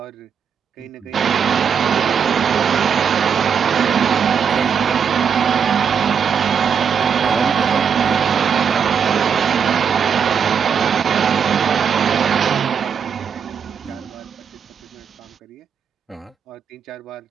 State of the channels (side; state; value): left; quieter; 7.1 dB